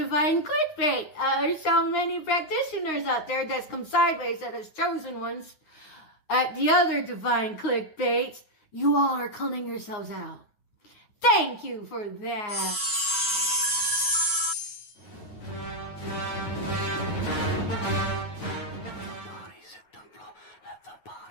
clickbait. There's so many practitioners out there that's come sideways that as chosen ones. At the other divine clickbait, you all are calling yourselves out. Thank you for that.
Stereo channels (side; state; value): right; late; 9.4 ms